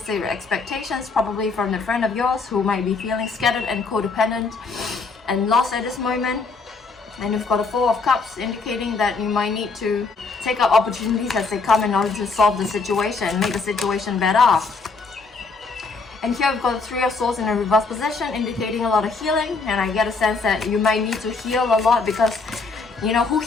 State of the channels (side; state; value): right; quieter; 4.2 dB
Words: expectations, probably from a friend of yours who might be feeling scattered and codependent and lost at this moment. And we've got a Four of Cups, indicating that you might need to take up opportunities as they come in order to solve the situation, make the situation better. And here we've got the Three of Swords in a reverse position, indicating a lot of healing. And I get a sense that you might need to heal a lot, because you know who